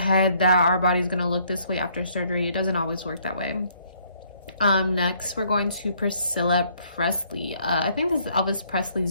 that our body's gonna look this way after surgery, it doesn't always work that way. Next, we're going to Priscilla Presley. I think this is Elvis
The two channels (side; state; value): both; inverted; correlation -0.66